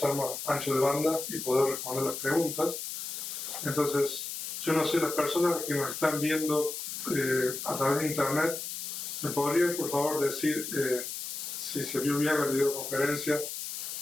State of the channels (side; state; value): left; noise; hiss, 6 dB below the sound